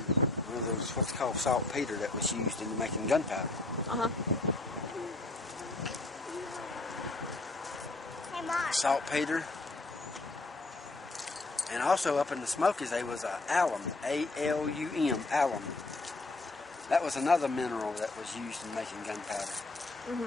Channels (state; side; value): quieter; right; 3.1 dB